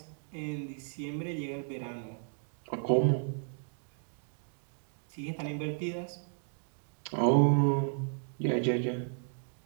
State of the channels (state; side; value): silent; left; 55 dB below the other